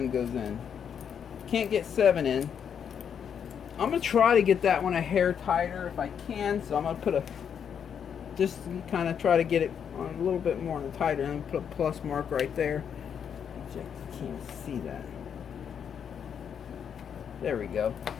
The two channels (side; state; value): right; quieter; 7.8 dB